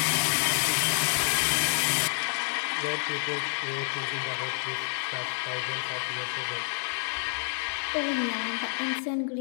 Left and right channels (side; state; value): right; silent; digital silence